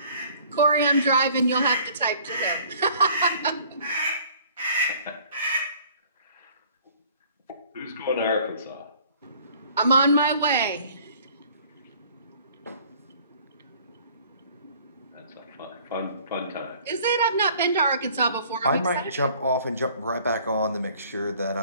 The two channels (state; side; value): inverted; both; correlation -0.54